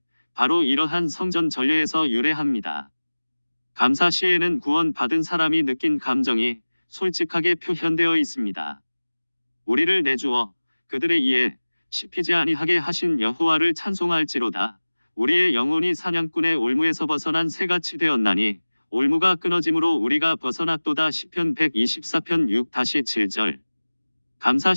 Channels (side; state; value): both; inverted; correlation -1.00